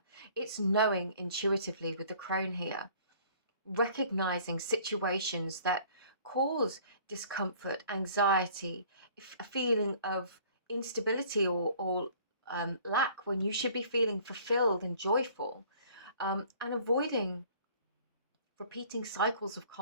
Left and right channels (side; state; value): both; inverted; correlation -0.53